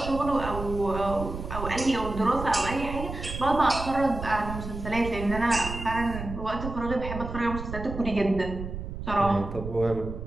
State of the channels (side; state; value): right; noise; rumble, 8 dB below the sound